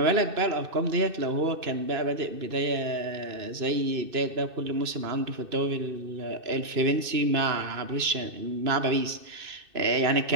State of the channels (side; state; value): left; late; 2.6 ms